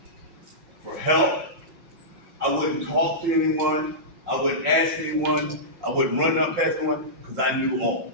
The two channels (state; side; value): late; left; 5.5 ms